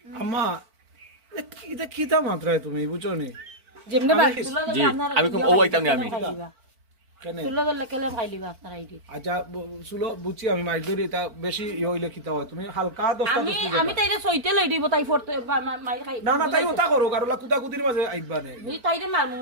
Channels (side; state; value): left; late; 4.5 ms